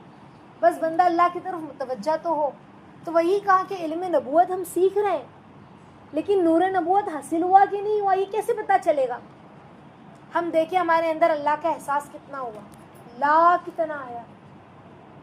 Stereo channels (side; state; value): both; identical; correlation 1.00